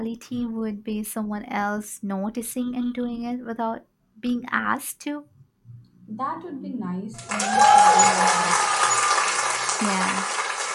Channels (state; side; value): identical; both; correlation 1.00